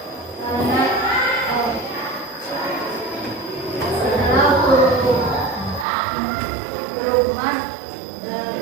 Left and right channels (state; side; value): drops out; left; at 5.9 s